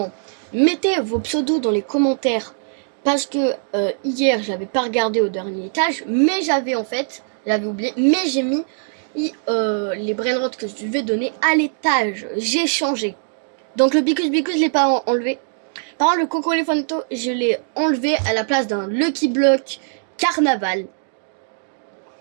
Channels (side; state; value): left; silent; digital silence